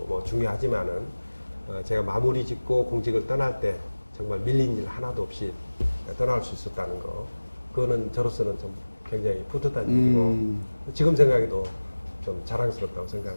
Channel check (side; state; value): both; inverted; correlation -1.00